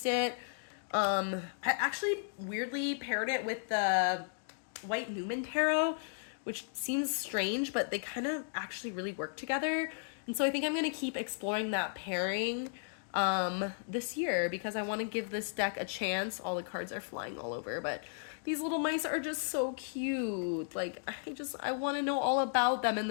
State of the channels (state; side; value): silent; right; digital silence